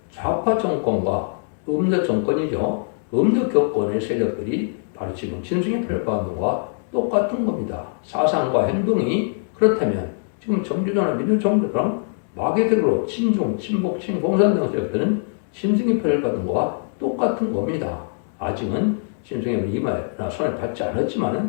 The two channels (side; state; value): right; silent; digital silence